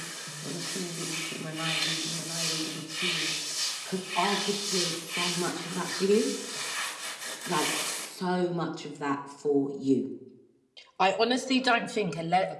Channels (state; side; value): identical; both; correlation 1.00